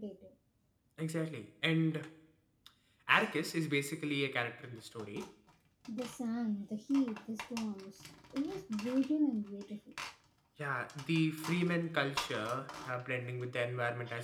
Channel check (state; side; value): identical; both; correlation 1.00